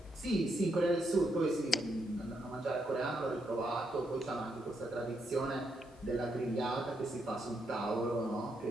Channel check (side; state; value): both; normal; correlation 0.79